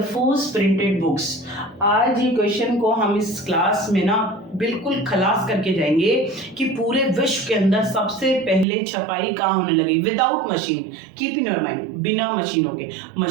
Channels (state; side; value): drops out; left; at 8.7 s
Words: फर्स्ट प्रिंटेड बुक्स। आज ये क्वेश्चन को हम इस क्लास में ना बिल्कुल खलास करके जाएंगे कि पूरे विश्व के अंदर सबसे पहले छपाई कहाँ होने लगी, without machine, keep in your mind, बिना मशीनों के।